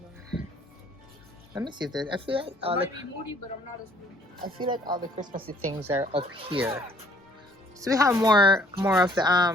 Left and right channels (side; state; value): both; normal; correlation 0.60